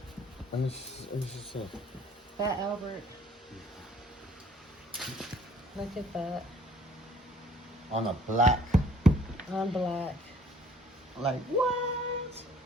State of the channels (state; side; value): normal; both; correlation 0.57